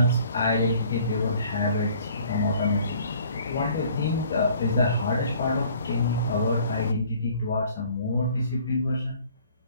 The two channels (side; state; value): both; inverted; correlation -0.55